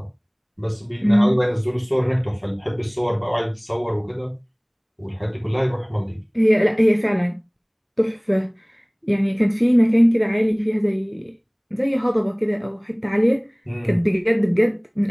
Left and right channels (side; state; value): both; identical; correlation 1.00